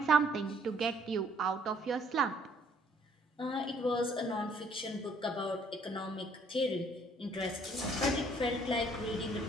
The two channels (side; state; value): both; normal; correlation 0.62